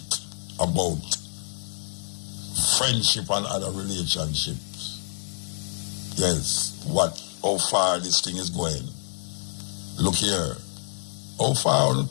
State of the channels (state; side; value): silent; right; digital silence